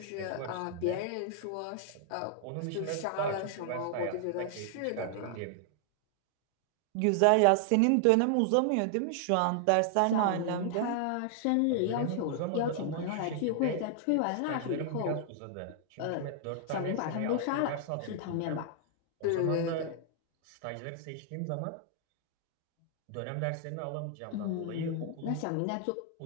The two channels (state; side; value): different; both; correlation 0.00